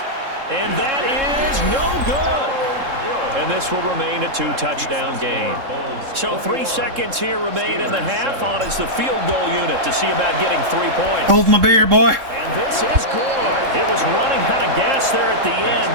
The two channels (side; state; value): left; late; 3.7 ms